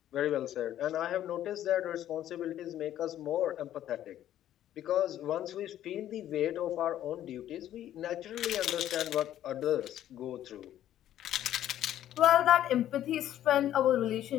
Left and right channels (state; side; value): quieter; right; 12.0 dB